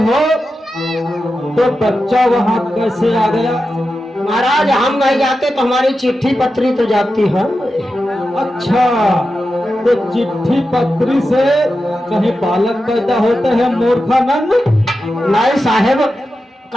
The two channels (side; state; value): both; normal; correlation 0.90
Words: हो, तो बच्चा वहां कैसे आ गया? महाराज हम नहीं जाते तो हमारी चिट्ठी पत्री तो जाती है। अच्छा तो चिट्ठी पत्री से कहीं बालक पैदा होते हैं मूर्खानंद? नहीं साहेब,